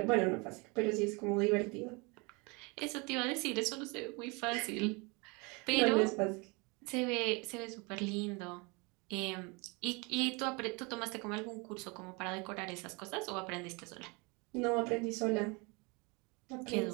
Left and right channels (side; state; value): left; quieter; 28.9 dB